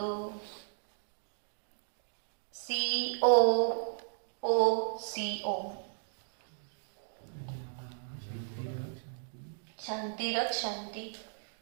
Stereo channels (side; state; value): left; silent; digital silence